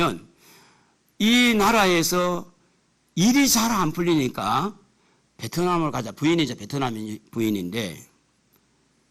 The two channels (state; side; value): identical; both; correlation 1.00